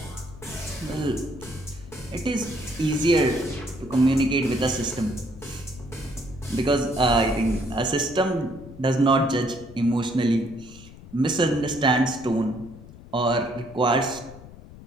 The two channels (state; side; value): noise; left; rumble, 18 dB below the sound